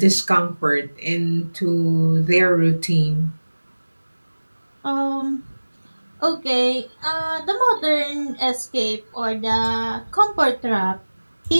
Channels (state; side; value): inverted; both; correlation -1.00